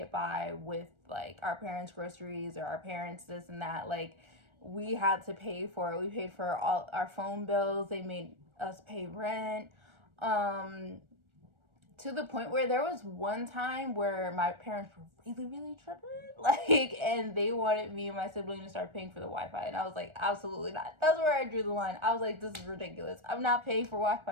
by with like our parents' groceries or our parents this and that. Like we had to pay for it. We paid for all our phone bills. They made us pay rent. To the point where there was one time where my parents were really, really tripping, like, and they wanted me and my sibling to start paying for the Wi-Fi, and I was like, absolutely not. That's where I drew the line. I was like, this is ridiculous. I'm not paying for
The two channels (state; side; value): late; left; 1.4 ms